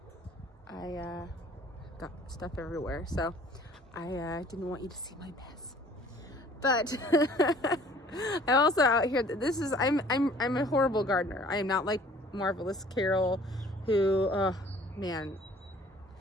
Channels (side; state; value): both; normal; correlation 0.53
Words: I got stuff everywhere, so I didn't want you to see my mess. But I'm also out here. I'm a horrible gardener. I am not like Marvelous Carol, who, man,